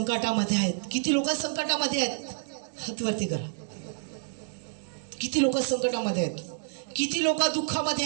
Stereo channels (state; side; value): silent; left; digital silence